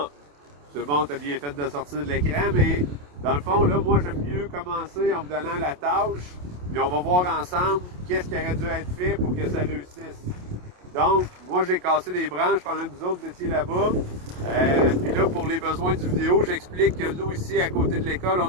c'est bon, t'as bien fait de sortir de l'écran, mais dans le fond, là, moi, j'aime mieux commencer en vous donnant la tâche, puis on va voir ensemble qu'est-ce qui aurait dû être fait pour que ça réussisse. Donc, moi, j'ai cassé des branches pendant que vous autres vous étiez là-bas. Puis là, pour les besoins du vidéo, j'explique que nous, ici, à côté de l'école, on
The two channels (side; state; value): left; late; 28 ms